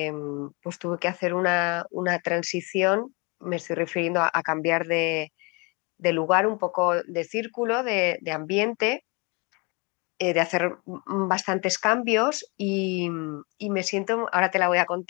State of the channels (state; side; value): quieter; right; 30.0 dB